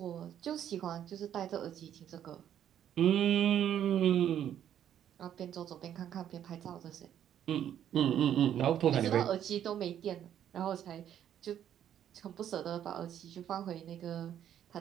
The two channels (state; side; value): quieter; left; 10.2 dB